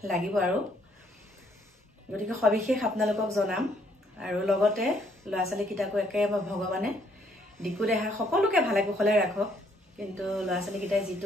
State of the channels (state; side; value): normal; both; correlation 0.68